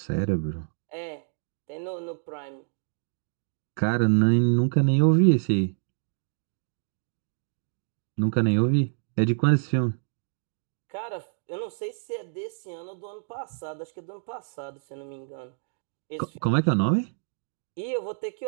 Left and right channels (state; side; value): silent; left; 60 dB below the other